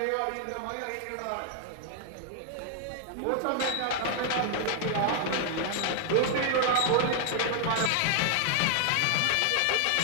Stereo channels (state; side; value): different; both; correlation 0.00